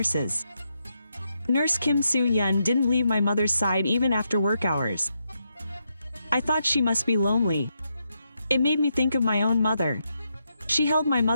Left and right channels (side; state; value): both; inverted; correlation -0.82